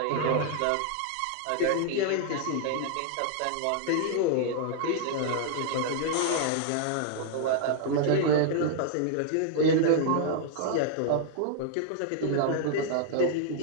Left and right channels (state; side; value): different; both; correlation 0.00